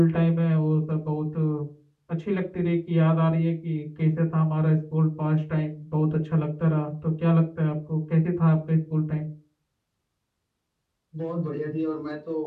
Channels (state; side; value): identical; both; correlation 1.00